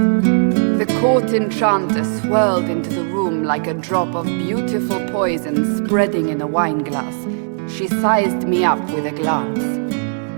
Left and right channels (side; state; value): left; silent; 67 dB below the other